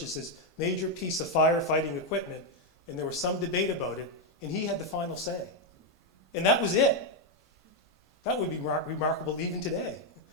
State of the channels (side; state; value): both; normal; correlation 0.03